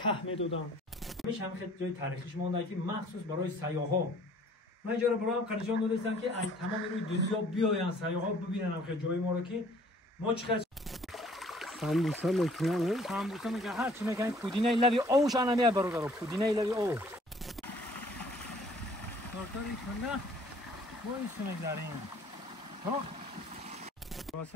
میدادن همیشه هم خیلی جای تاریخیش مونده که مخصوص برای سیاحا من اینجا رو برای هم نشون دادم که از تمام روی دنیا بیاین سیاحا ببینن هم جای ما رو که ما چقدر سامبوسا میکنن سامبوسا میگه هر چی میگن پودینه لبی اوش انا میاد برادر پودینه لبی او کارتاری کنه ما این سونه داریم ها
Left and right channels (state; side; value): normal; both; correlation 0.56